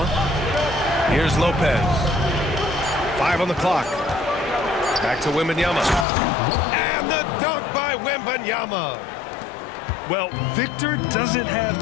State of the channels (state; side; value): drops out; right; at 6.1 s